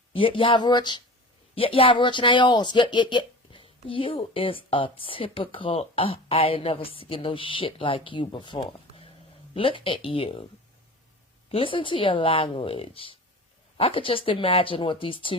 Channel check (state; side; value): normal; both; correlation 0.36